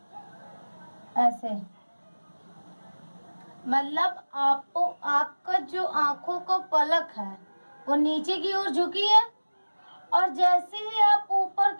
ऐसे। मतलब आपको, आपका जो आंखों का पलक है वो नीचे की ओर झुकी है, और जैसे ही आप ऊपर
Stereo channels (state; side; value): inverted; both; correlation -1.00